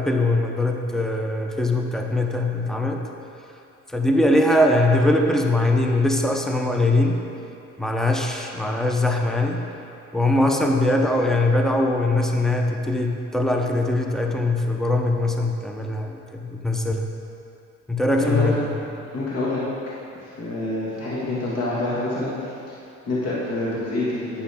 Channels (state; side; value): normal; both; correlation 0.71